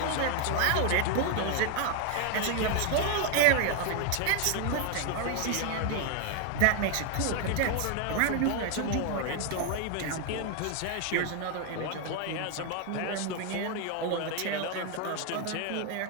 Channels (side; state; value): both; different; correlation 0.00